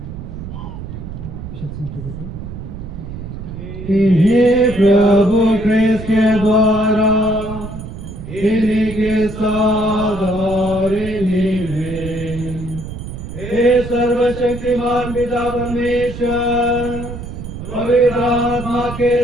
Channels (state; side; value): noise; right; rumble, 10 dB below the sound